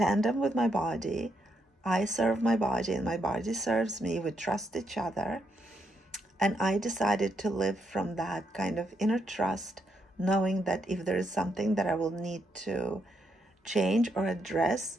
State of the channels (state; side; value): normal; both; correlation 0.78